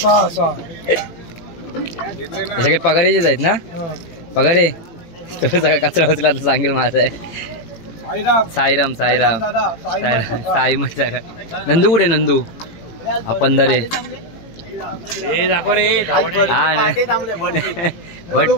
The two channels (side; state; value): right; late; 18 ms